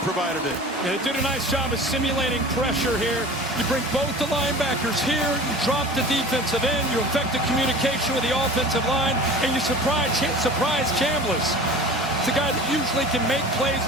provided it. And they did a nice job of simulating pressure here. You bring both the linebackers here, you drop the defensive end, you affect the communication with the offensive line, and you surprise Chambliss. It's a guy that usually can make plays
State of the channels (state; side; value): normal; both; correlation 0.39